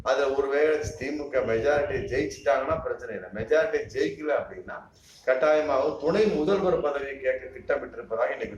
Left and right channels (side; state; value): both; identical; correlation 1.00